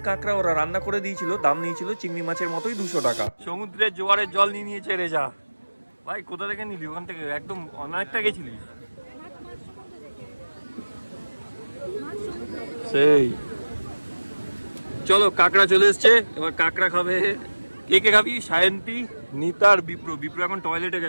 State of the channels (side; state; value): both; inverted; correlation -1.00